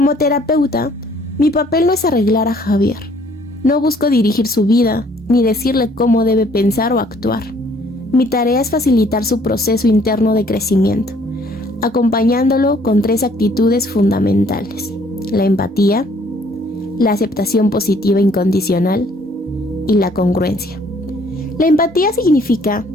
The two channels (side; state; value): both; normal; correlation 0.61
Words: terapeuta, mi papel no es arreglar a Javier. No busco dirigir su vida ni decirle cómo debe pensar o actuar. Mi tarea es facilitar su proceso interno de crecimiento, acompañándolo con 3 actitudes fundamentales: la empatía, la aceptación positiva incondicional y la congruencia. La empatía significa